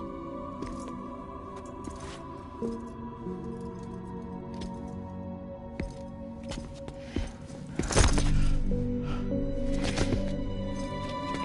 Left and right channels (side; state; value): both; identical; correlation 1.00